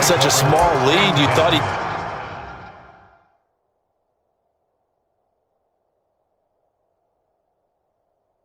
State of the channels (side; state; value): both; identical; correlation 1.00